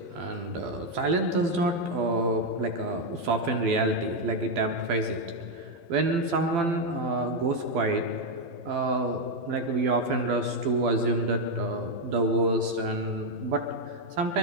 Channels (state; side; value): late; left; 12 ms